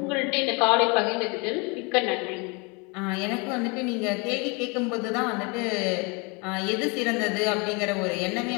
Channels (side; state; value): right; quieter; 30.1 dB